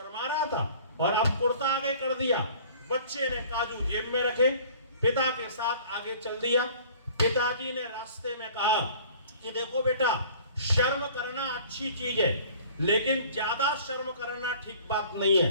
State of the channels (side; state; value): both; inverted; correlation -0.50